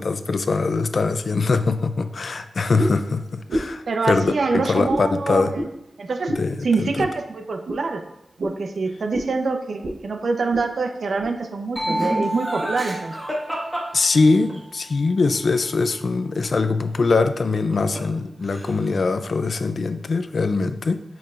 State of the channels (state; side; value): normal; both; correlation 0.90